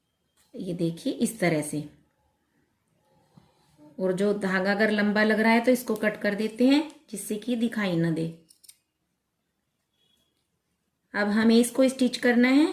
ये देखिए इस तरह से। और जो धागा अगर लंबा लग रहा है तो इसको कट कर देते हैं जिससे कि दिखाई ना दे। अब हमें इसको स्टिच करना है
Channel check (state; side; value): identical; both; correlation 1.00